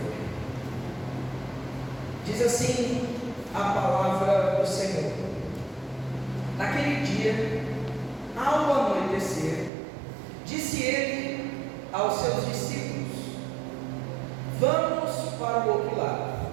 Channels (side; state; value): left; drops out; at 9.7 s